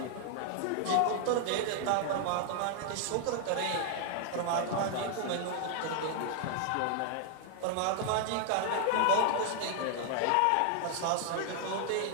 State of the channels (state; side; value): different; both; correlation 0.00